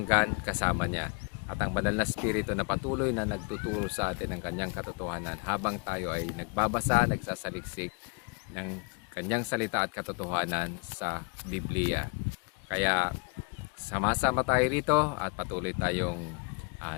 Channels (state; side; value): quieter; right; 33.2 dB